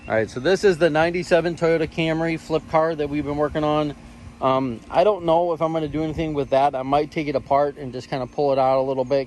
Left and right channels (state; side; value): identical; both; correlation 1.00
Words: All right, so this is the 97 Toyota Camry Flip car that we've been working on. I don't know if I'm going to do anything with that. I might take it apart and just kind of pull it out a little